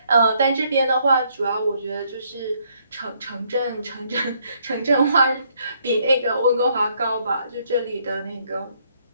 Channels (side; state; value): both; inverted; correlation -0.70